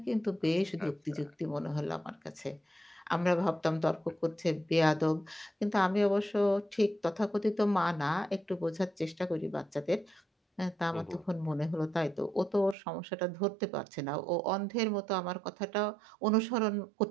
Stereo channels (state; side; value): drops out; left; at 12.8 s